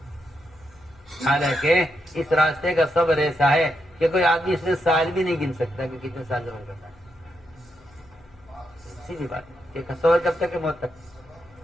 حالانکہ اس راستے کا صبر ایسا ہے کہ کوئی آدمی اس میں سال بھی نہیں گن سکتا کہ کتنے سال صبر کرنا ہے. سیدھی بات ہے کہ صبر کب تک ہے؟ موت تک.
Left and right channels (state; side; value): noise; left; hum, 28 dB below the sound